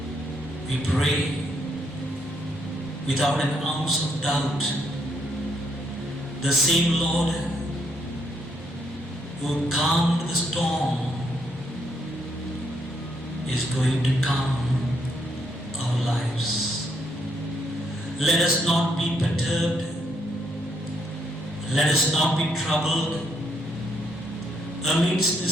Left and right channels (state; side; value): normal; both; correlation 0.73